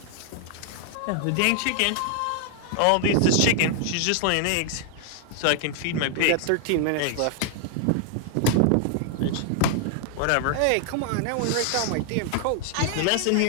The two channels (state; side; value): different; both; correlation 0.00